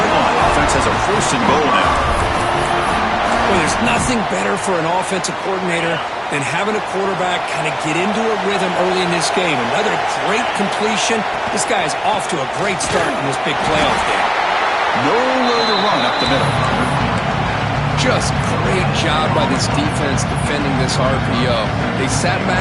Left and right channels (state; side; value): identical; both; correlation 1.00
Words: line. Offense has a first and goal now. Well, there's nothing better for an offensive coordinator than having a quarterback kind of get into a rhythm early in this game. Another great completion. This guy is off to a great start in this big playoff game. Nowhere to run up the middle. Just great job by this defense defending this RPO. They sat